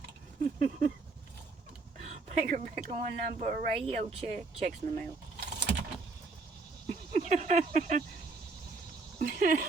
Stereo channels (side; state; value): left; quieter; 3.9 dB